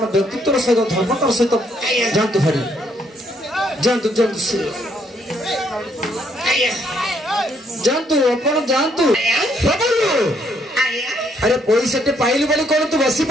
व्यक्तित्व सहित धर्मतार सहित जानतु हरि जानतु जानतु जानतु आपण जानतु प्रभु अरे पैसा टे पाइलु बोली कोन तू बसी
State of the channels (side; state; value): both; normal; correlation 0.70